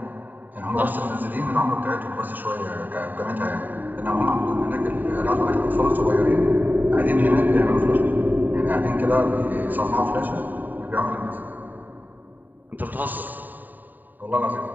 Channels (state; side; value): late; left; 0.088 ms